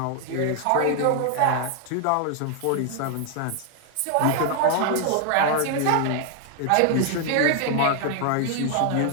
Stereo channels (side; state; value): both; different; correlation 0.00